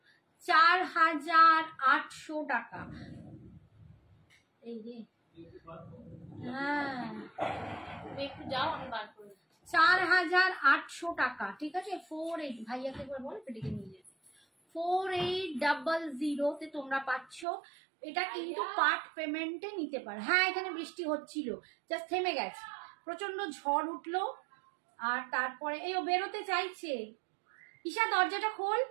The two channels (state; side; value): drops out; left; at 17.4 s